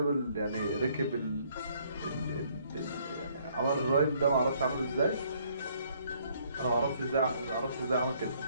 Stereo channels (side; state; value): both; inverted; correlation -0.65